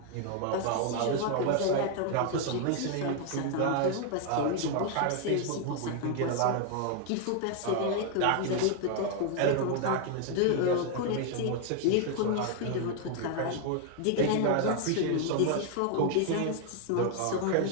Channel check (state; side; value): different; both; correlation 0.00